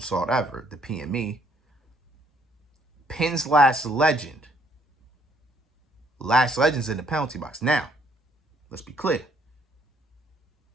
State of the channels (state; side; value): normal; both; correlation 0.66